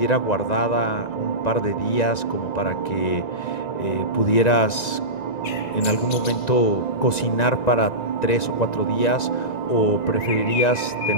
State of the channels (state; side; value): late; right; 1.9 ms